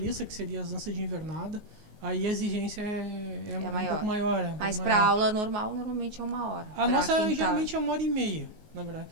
que seria as danças de invernada, aí a exigência é um pouco maior. Mas para aula normal, normalmente é 1 hora. A nossa geralmente é 1h30, na verdade.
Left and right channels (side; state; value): left; late; 19 ms